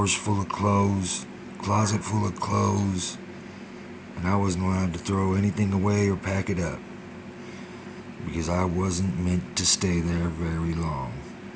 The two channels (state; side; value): identical; both; correlation 1.00